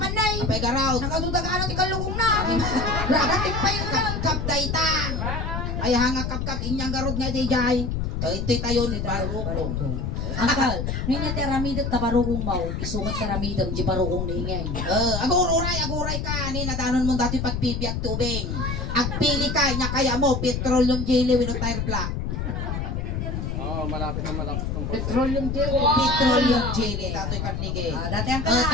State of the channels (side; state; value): left; noise; rumble, 2 dB below the sound